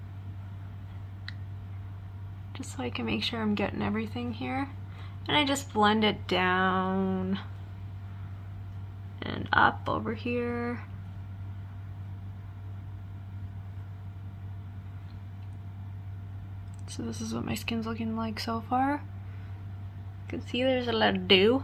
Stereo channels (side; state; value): both; identical; correlation 1.00